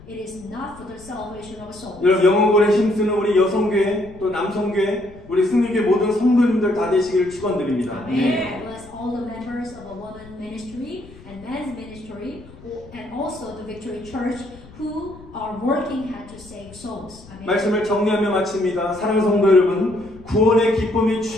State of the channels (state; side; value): noise; left; rumble, 21 dB below the sound